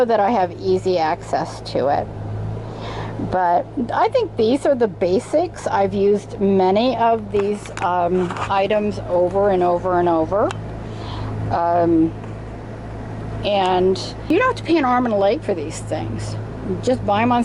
that I have easy access to it. But I think these are the basics. I've used many of these items over and over and over. And you don't have to pay an arm and a leg for these things. Just buy them on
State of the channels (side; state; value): both; identical; correlation 1.00